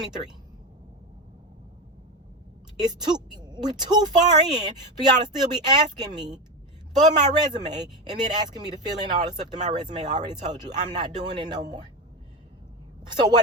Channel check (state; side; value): normal; both; correlation 0.18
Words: We're too far in for y'all to still be asking me for my resume and then asking me to fill in all the stuff that my resume already told you. I'm not doing it no more. So